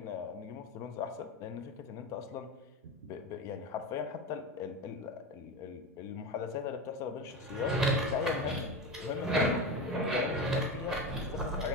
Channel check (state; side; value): normal; both; correlation 0.22